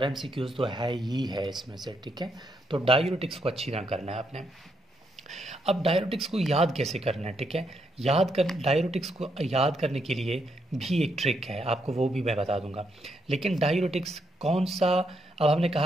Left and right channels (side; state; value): both; normal; correlation 0.78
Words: MCQs तो है ही है इसमें से, ठीक है। तो डायूरेटिक्स को अच्छी तरह करना है आपने। अब डायूरेटिक्स को याद कैसे करना है, ठीक है। डायूरेटिक्स को याद करने के लिए भी एक ट्रिक है, आपको वो भी मैं बता दूंगा। लेकिन डायूरेटिक्स कौन सा? अब हमने